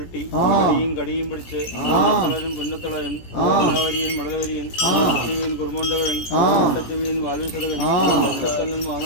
കടിയും പിടിച്ച് തളരൻ പുന്നത്തളരൻ മലവരിയൻ മടലവരിയൻ കുറുമോണ്ടവരൻ ചെവിയൻ വാൽവിസതകൻ ഒറ്റക്കല്ലൻ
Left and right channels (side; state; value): right; late; 17 ms